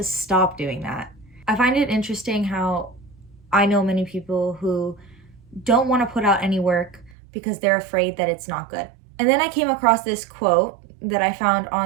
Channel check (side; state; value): left; drops out; at 7.2 s